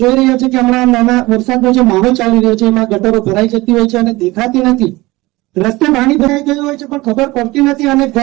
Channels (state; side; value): quieter; left; 20.5 dB